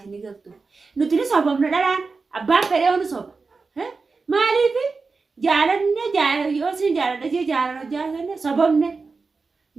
galtu nuti ni sababna dhalaan abbaan fedhee onu soba maaliifi جالنا جال يوسين جال دجى جالنا سببنا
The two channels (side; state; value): left; quieter; 4.3 dB